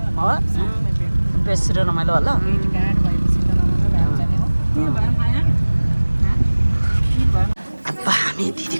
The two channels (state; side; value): inverted; both; correlation -1.00